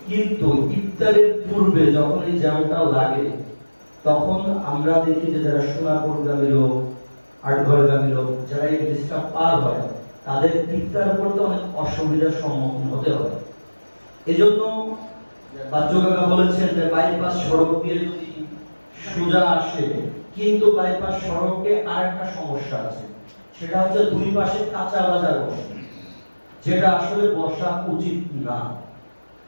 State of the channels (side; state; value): both; inverted; correlation -1.00